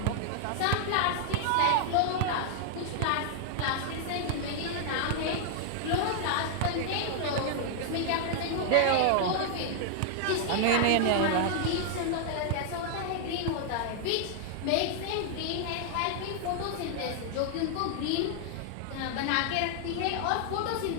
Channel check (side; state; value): both; different; correlation 0.00